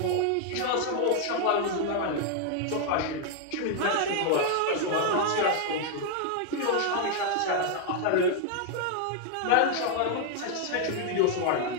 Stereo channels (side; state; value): both; different; correlation 0.00